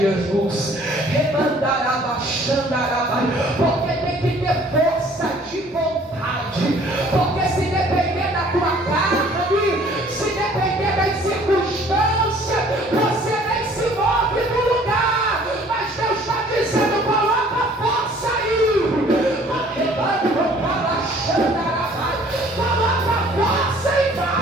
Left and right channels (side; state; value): both; normal; correlation 0.55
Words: porque tem que ter força de vontade, porque se depender da tua carne, se depender das circunstâncias, você nem se move do lugar, mas Deus está dizendo, coloca força aí, coloca força e